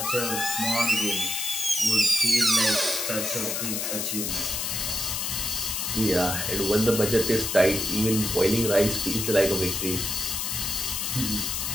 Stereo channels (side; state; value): left; noise; hiss, 1 dB below the sound